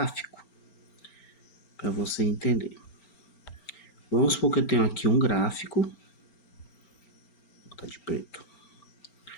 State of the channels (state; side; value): late; right; 4.4 ms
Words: para você entender. Vamos supor que eu tenho aqui um gráfico, vou botar de preto.